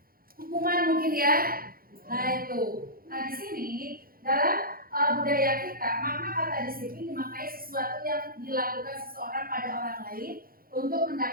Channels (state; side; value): late; left; 0.42 ms